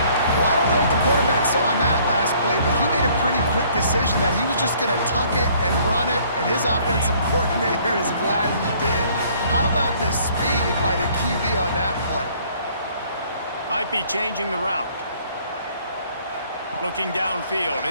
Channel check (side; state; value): both; inverted; correlation -0.59